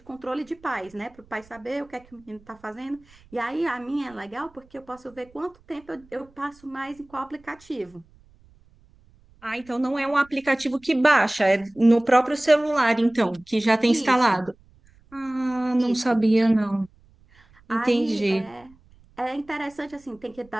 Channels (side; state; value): right; noise; rumble, 29 dB below the sound